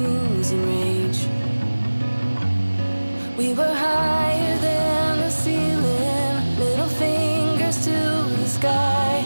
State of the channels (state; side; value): inverted; both; correlation -1.00